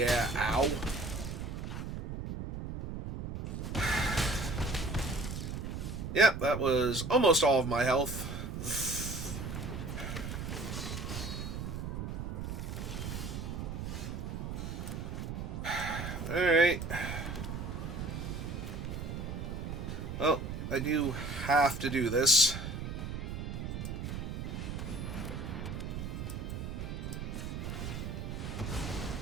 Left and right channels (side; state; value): right; noise; rumble, 5 dB below the sound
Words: ow. Yep, that was almost all of my health. Alright. Well, I do have to do this.